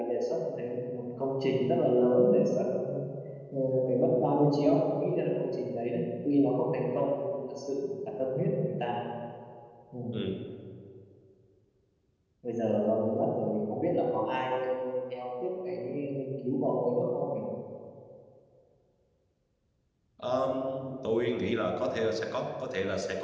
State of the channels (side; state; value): both; identical; correlation 1.00